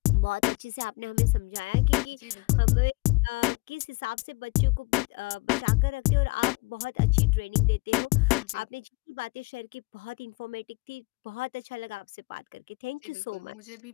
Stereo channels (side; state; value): right; quieter; 27.2 dB